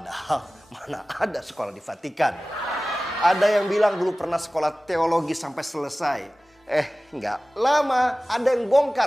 mana ada sekolah di Vatikan. Ada yang bilang dulu pernah sekolah teologi sampai selesai. Nggak lama ada yang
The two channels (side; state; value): both; normal; correlation 0.97